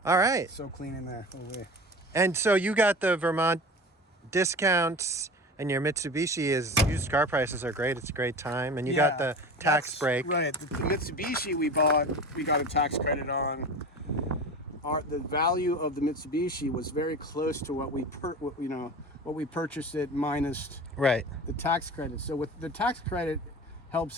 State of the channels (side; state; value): both; normal; correlation 0.33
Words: All right. So clean in there. Oh, wait. And so you got the Vermont discounts, and your Mitsubishi used car prices are great. It's a great time. And you got the tax break. Right. The Mitsubishi we got a tax credit on. The value of the Mitsubishi was very close to what we purchased it minus the tax credit. So with the tax credit helps